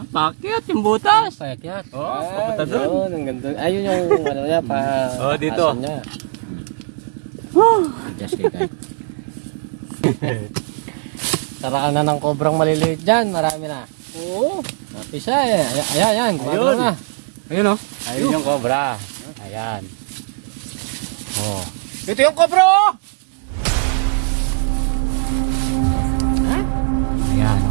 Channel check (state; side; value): silent; left; digital silence